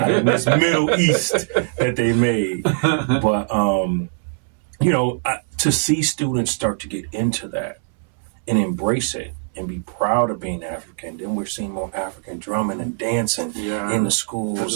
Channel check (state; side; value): silent; left; 65 dB below the other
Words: in this Middle East that they made. But, to see students start to get into that and embrace it and be proud of being African. Then we're seeing more African drumming and dancing in the schools,